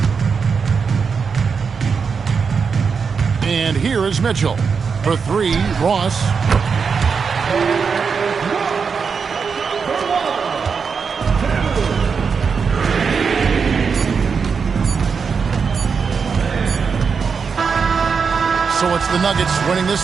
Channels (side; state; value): left; quieter; 5.7 dB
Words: And here is Mitchell. For three, Ross. So it's the Nuggets winning this